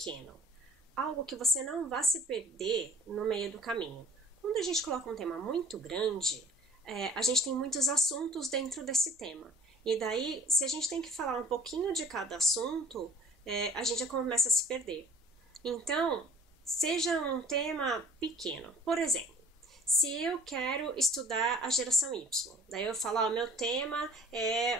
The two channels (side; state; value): both; normal; correlation 0.50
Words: Algo que você não vá se perder no meio do caminho. Quando a gente coloca um tema muito grande, a gente tem muitos assuntos dentro desse tema. E daí, se a gente tem que falar um pouquinho de cada assunto, a gente já começa a se perder. Então, seja um tema pequeno. Por exemplo, se eu quero estudar a geração Y, daí eu falo, meu tema é